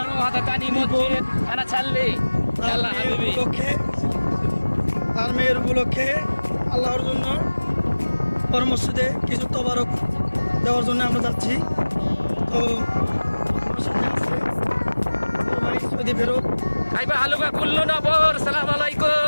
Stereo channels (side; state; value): both; inverted; correlation -1.00